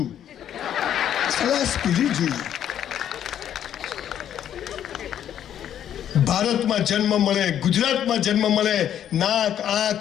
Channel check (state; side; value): quieter; right; 10.2 dB